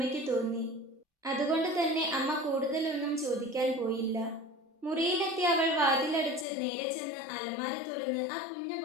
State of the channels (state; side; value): drops out; right; at 6.5 s